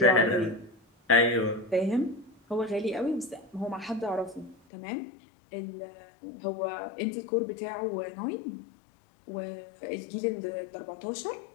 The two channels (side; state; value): right; drops out; at 4.5 s